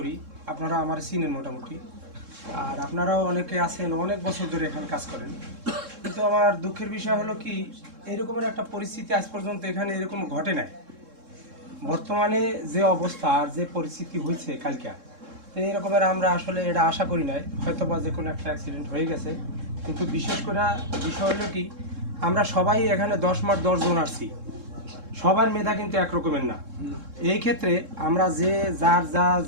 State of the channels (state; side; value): late; left; 3.7 ms